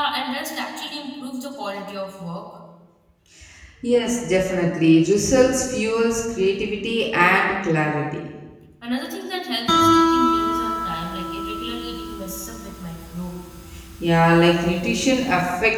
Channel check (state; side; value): identical; both; correlation 1.00